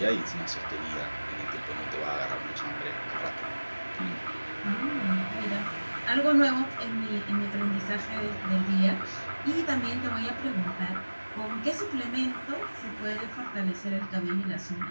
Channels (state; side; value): inverted; both; correlation -1.00